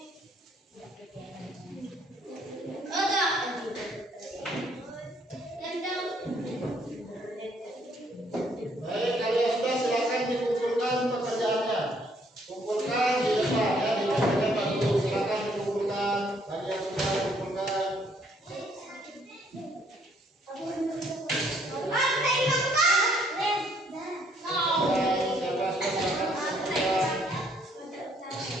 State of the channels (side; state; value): both; normal; correlation 0.66